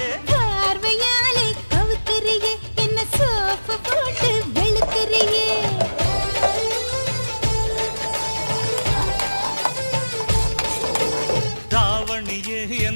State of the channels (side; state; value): both; inverted; correlation -1.00